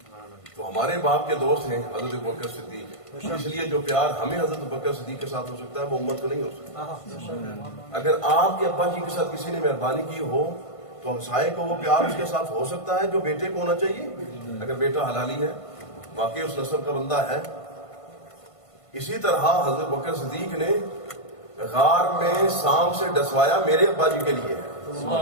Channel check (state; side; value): late; right; 1.5 ms